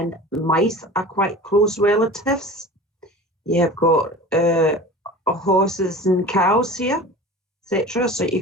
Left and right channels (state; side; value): normal; both; correlation 0.37